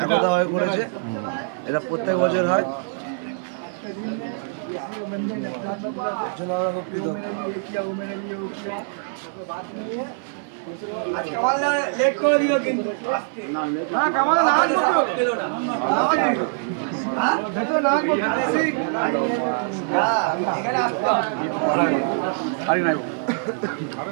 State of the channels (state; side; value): silent; left; 58 dB below the other